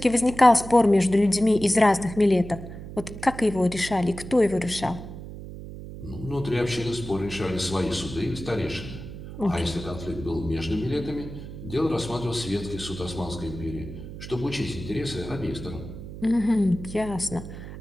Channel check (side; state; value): right; noise; hum, 11 dB below the sound